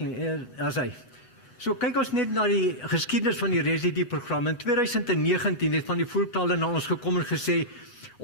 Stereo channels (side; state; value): right; late; 8.2 ms